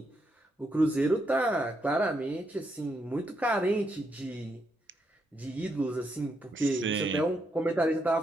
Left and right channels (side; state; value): both; normal; correlation 0.79